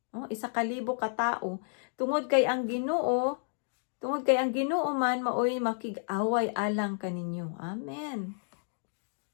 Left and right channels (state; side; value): silent; right; digital silence